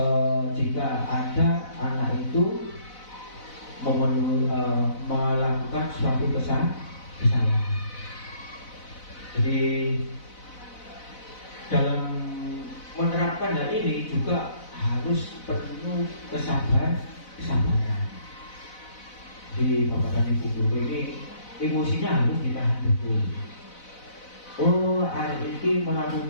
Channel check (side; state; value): right; late; 4.0 ms